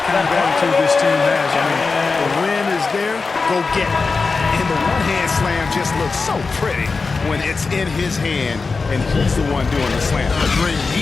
kind of attitude this team has. I mean, the win is there, go get it. And the one-hand slam just looks so pretty when it's in his hand and he's the one doing the slam. Agreed.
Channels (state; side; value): quieter; right; 4.3 dB